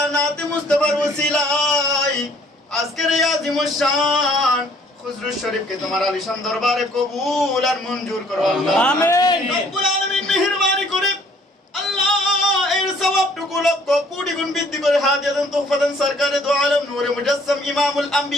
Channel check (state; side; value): normal; both; correlation 0.60